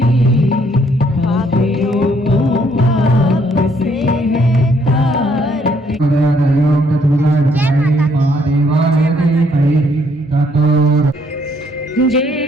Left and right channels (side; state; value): both; normal; correlation 0.68